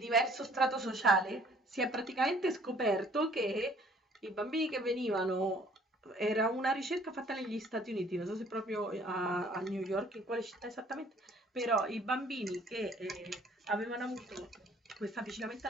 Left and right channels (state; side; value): normal; both; correlation 0.57